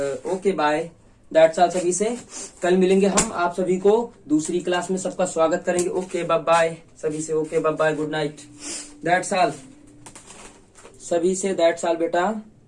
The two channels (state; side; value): identical; both; correlation 1.00